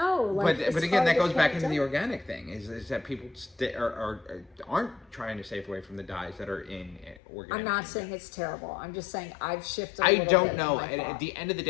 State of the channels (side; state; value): right; drops out; at 7.2 s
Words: Like, but again, that goes back into the organic thing. Is that people aren't trying to stay away from the dyes that are in organic. I'm not saying it's terrible. I'm just saying I've shifted. I don't know. At the end of the